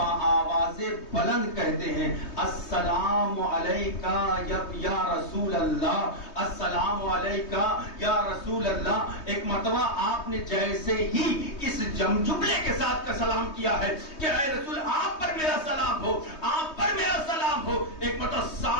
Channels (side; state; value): right; late; 3.2 ms